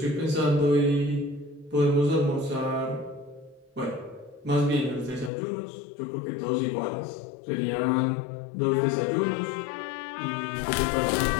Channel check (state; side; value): drops out; right; at 5.3 s